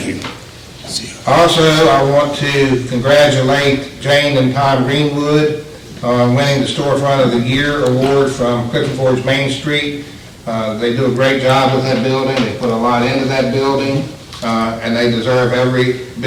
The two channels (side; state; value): both; identical; correlation 1.00